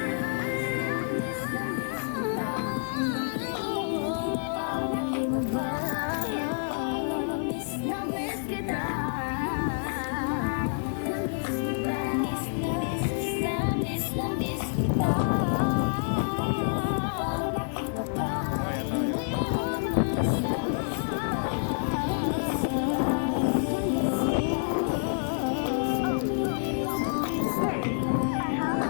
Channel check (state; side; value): silent; right; digital silence